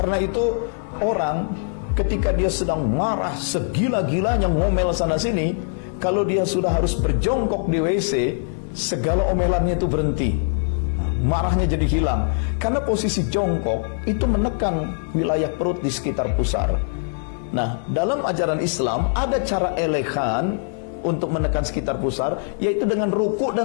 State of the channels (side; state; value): right; silent; 60 dB below the other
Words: itu orang ketika dia sedang marah segila-gilanya ngomel sana sini, kalau dia sudah harus berjongkok di WC, segala omelannya itu berhenti. Marahnya jadi hilang. Karena posisi jongkok itu menekan wilayah perut di sekitar pusar. Nah, dalam ajaran Islam ada cara elegan untuk menekan sekitar pusar, yaitu dengan ruku